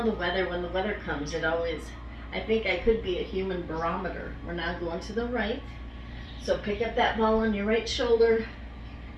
the weather, when the weather comes, it always, I think I could be a human barometer. We're now going to the right. So pick up that ball on your right shoulder.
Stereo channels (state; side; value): identical; both; correlation 1.00